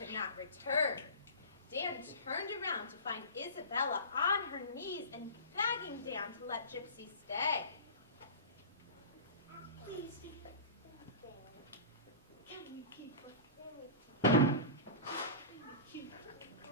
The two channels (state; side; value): inverted; both; correlation -0.32